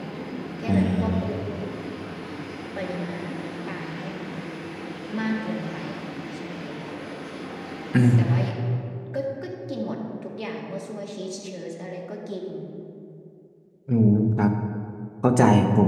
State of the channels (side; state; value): both; identical; correlation 1.00